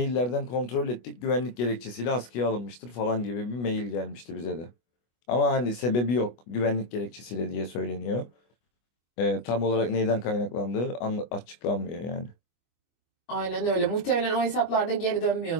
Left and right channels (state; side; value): late; right; 24 ms